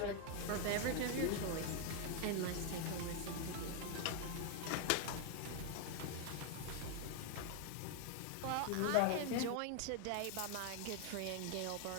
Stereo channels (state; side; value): different; both; correlation 0.01